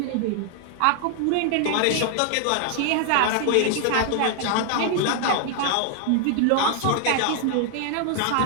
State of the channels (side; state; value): both; different; correlation 0.00